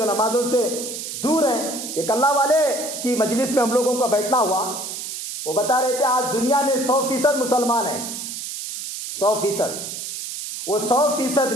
नमाजों से दूर हैं। एक अल्लाह वाले की मजलिस में हम लोगों का बैठना हुआ, वो बता रहे थे आज दुनिया में 100% मुसलमान हैं, 100%। वो 100%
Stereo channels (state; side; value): noise; right; hiss, 7 dB below the sound